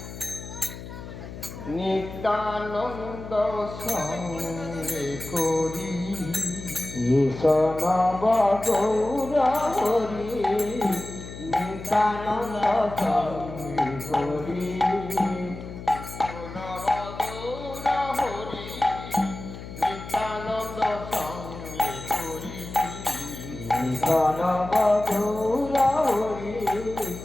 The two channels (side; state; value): left; noise; hum, 12 dB below the sound